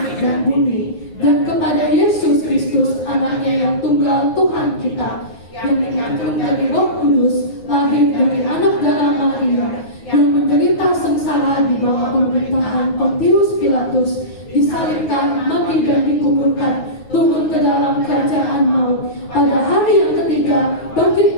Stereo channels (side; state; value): right; late; 9.5 ms